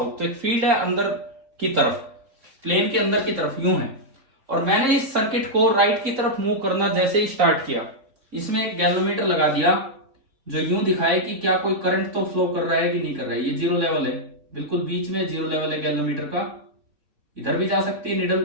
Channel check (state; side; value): late; left; 3.5 ms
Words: तो एक फील्ड है अंदर की तरफ, प्लेन के अंदर की तरफ यूं है। और मैंने इस सर्किट को राइट की तरफ मूव करना जैसे ही स्टार्ट किया, इसमें एक गैल्वेनोमीटर लगा दिया जो यूं दिखाए कि क्या कोई करंट तो फ्लो कर रहा है कि नहीं कर रहा है। ये जीरो लेवल है, बिल्कुल बीच में जीरो लेवल है गैल्वेनोमीटर का। इधर भी जा सकती है